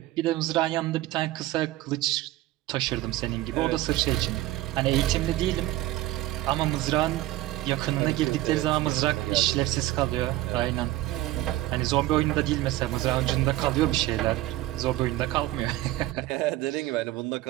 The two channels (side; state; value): left; quieter; 16.3 dB